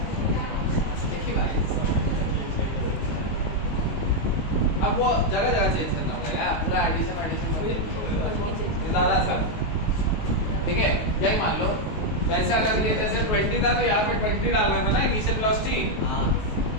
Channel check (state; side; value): late; right; 19 ms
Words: एक ही बात है। अब वो जगह जगह चेंज करना पड़ेगा, पूरा एडिशन ज़्यादा सर, ठीक है। यही मान लो वैसे अगर ये जैसे 20 था तो यहाँ पे 20 डालना था ना इनिशियल वेलोसिटी,